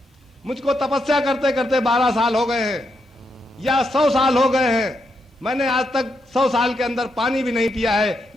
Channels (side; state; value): both; normal; correlation 0.82